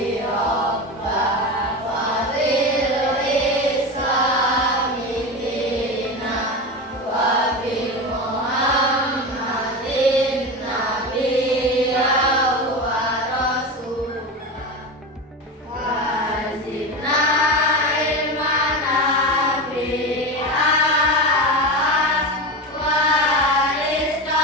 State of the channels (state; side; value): normal; both; correlation 0.22